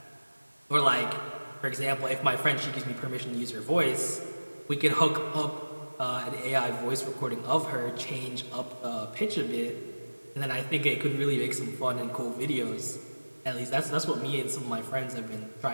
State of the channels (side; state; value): both; inverted; correlation -1.00